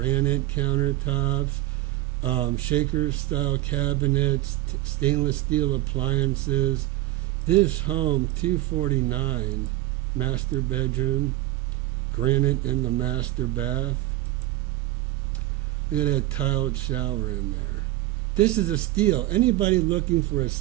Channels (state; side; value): quieter; left; 16.2 dB